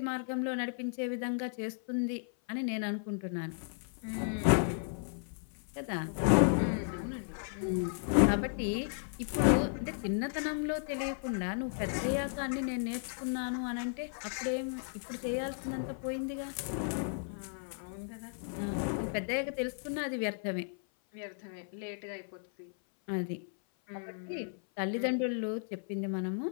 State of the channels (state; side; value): silent; right; 55 dB below the other